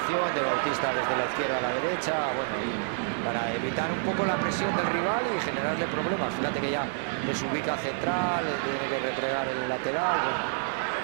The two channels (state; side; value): silent; left; 59 dB below the other